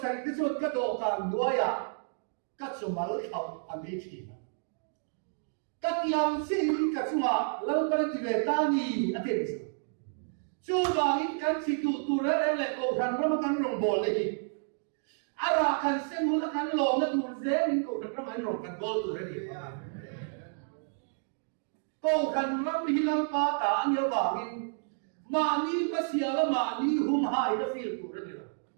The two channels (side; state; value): left; silent; digital silence